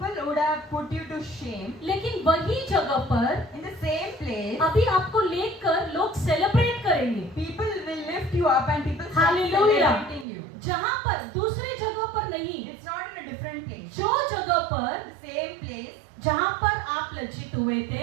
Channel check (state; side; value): drops out; left; at 10.2 s